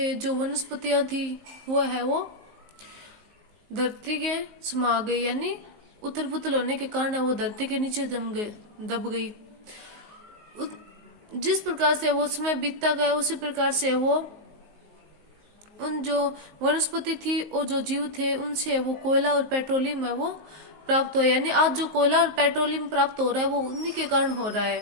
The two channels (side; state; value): left; late; 19 ms